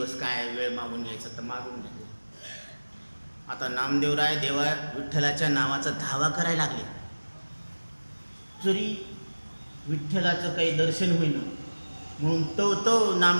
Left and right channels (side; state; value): both; inverted; correlation -1.00